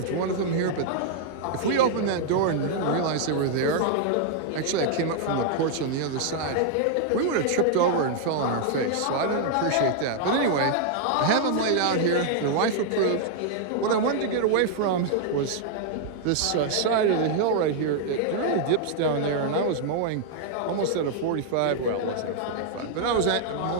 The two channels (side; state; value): both; different; correlation -0.01